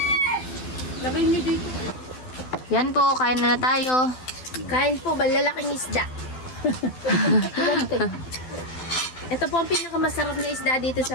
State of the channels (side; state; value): right; late; 12 ms